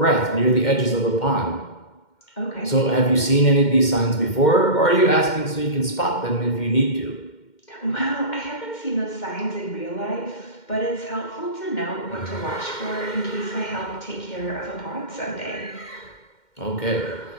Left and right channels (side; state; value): right; late; 2.1 ms